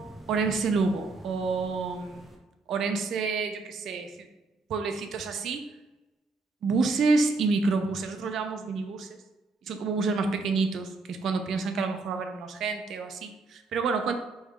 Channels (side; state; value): left; quieter; 3.8 dB